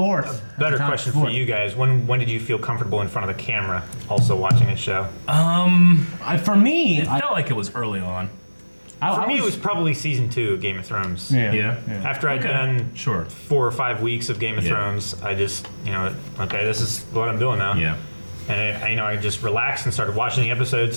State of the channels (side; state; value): both; inverted; correlation -1.00